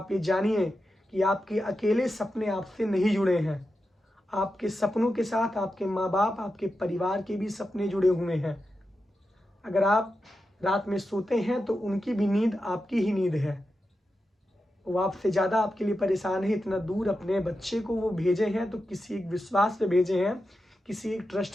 ये जानिए कि आपके अकेले सपने आपसे नहीं जुड़े हैं, आपके सपनों के साथ आपके माँ बाप, आपके परिवार के भी सपने जुड़े हुए हैं। अगर आप रात में सोते हैं तो उनकी भी नींद आपकी ही नींद है। वो आपसे ज़्यादा आपके लिए परेशान है। इतना दूर अपने बच्चे को वो भेजे हैं तो किसी एक विश्वास पे भेजे हैं, किसी एक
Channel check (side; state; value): both; normal; correlation 0.90